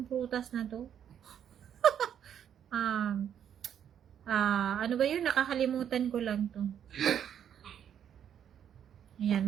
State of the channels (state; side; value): quieter; left; 9.1 dB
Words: prutas na to? Ano ba yun? Nakakalimutan ko lang to. Ayan,